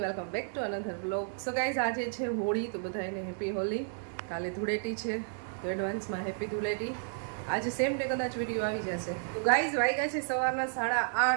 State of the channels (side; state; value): left; silent; digital silence